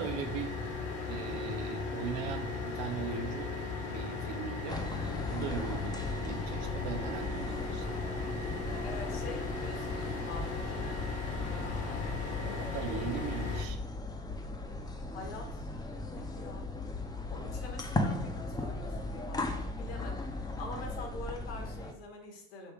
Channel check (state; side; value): normal; both; correlation 0.44